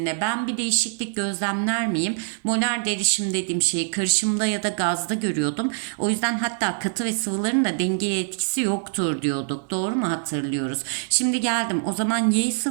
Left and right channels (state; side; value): silent; left; digital silence